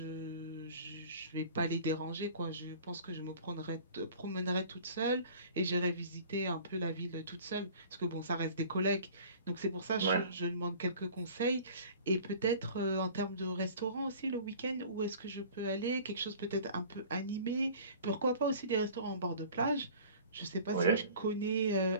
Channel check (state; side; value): inverted; both; correlation -0.45